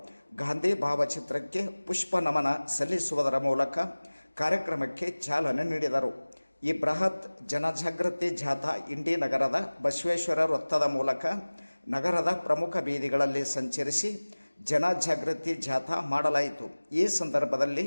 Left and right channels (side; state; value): both; inverted; correlation -1.00